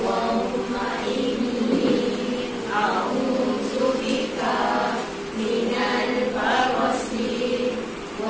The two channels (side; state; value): both; identical; correlation 1.00